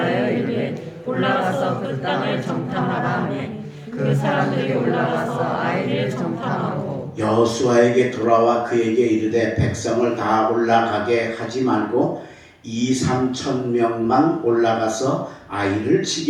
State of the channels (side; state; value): both; identical; correlation 1.00